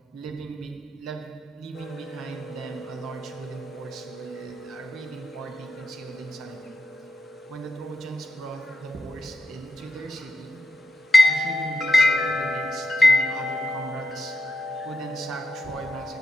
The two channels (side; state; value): both; normal; correlation 0.87